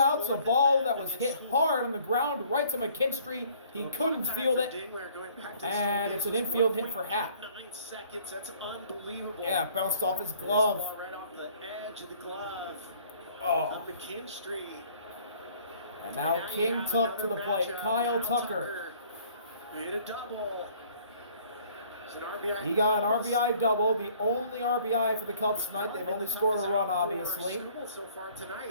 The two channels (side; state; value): both; inverted; correlation -0.57